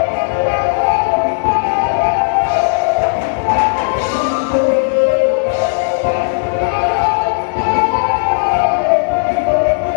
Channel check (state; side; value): silent; right; digital silence